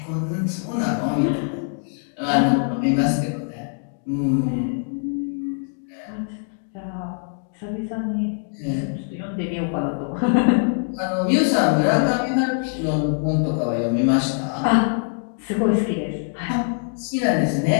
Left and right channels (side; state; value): right; silent; 63 dB below the other